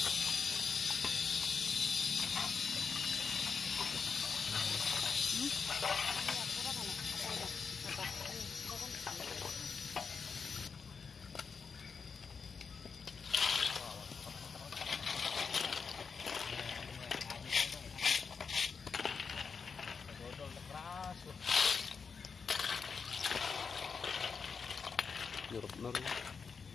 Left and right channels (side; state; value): right; quieter; 5.6 dB